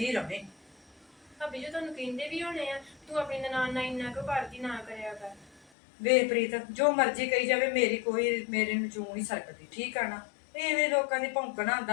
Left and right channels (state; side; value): drops out; right; at 5.7 s